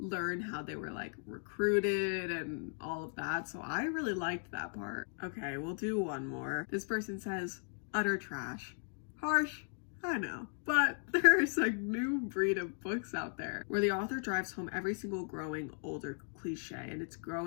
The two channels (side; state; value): right; silent; 53 dB below the other